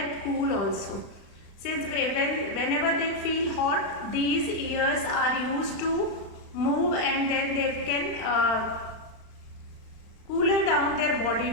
cool also. Since whenever they feel hot, these ears are used to move and then they can cooler down their body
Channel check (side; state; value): right; late; 35 ms